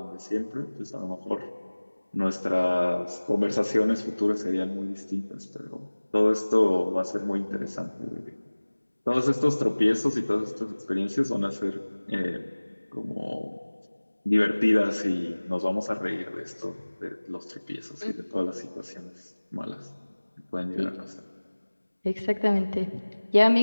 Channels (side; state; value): both; inverted; correlation -1.00